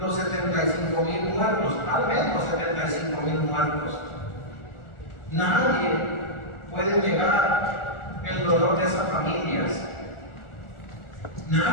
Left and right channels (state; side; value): late; right; 1.4 ms